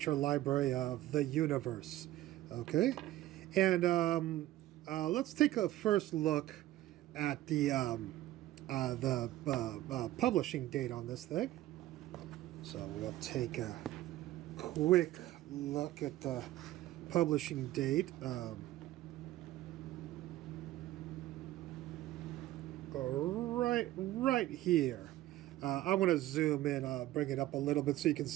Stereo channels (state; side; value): quieter; left; 15.2 dB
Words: Library of the Universe. Okay, and let's take a first look at the publishing date on this thing. So we'll take a quick look at the publishing date. Right here. I want to zoom in, bring it up a little bit so you can